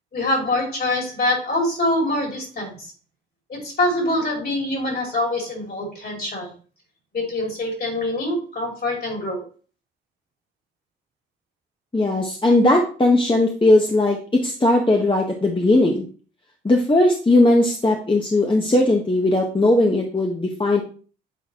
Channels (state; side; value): normal; both; correlation 0.64